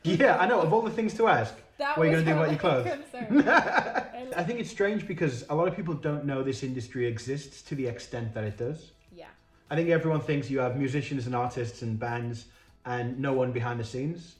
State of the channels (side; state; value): both; identical; correlation 1.00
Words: Yeah, I know. Of all the things to ask, what are you going to do about your clothes? I think it's strange because a lot of people don't know this industry exists to the extent that it does. Yeah. I think everyone thinks you have musicians and artists and bands and no one behind the scenes.